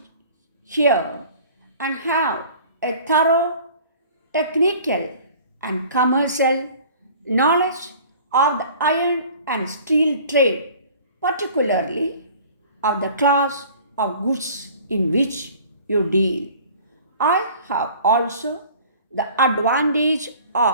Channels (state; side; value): inverted; both; correlation -0.47